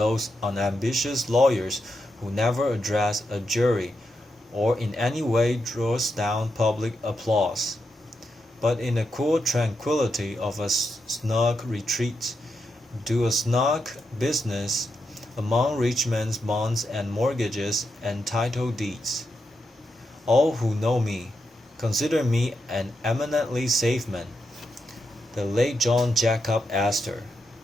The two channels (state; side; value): normal; both; correlation 0.85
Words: unambitious lawyers who never address a jury or in any way draws down public applause, but in the cool tranquillity of a snug retreat, do a snug business among rich men's bonds and mortgages and title deeds. All who know me consider me an eminently safe man. The late John Jacob Astor,